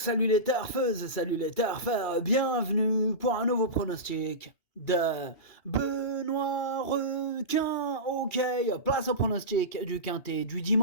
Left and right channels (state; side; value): late; right; 2.8 ms